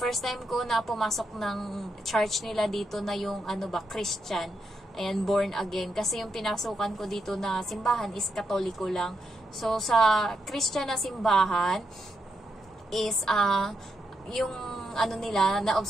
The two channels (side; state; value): both; normal; correlation 0.82